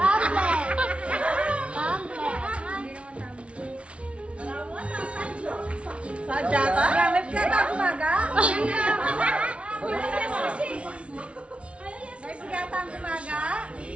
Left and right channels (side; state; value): left; late; 0.061 ms